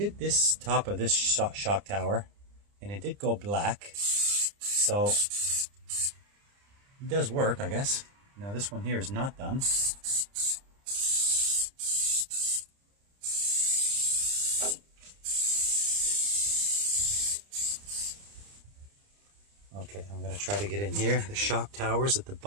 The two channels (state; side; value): late; left; 30 ms